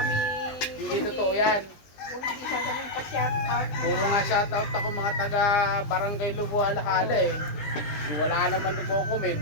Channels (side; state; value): right; late; 20 ms